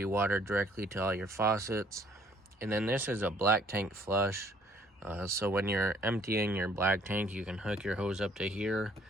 water directly to all your faucets. And then this is a black tank flush. So when you're emptying your black tank, you can hook your hose up to here,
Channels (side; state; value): both; normal; correlation 0.61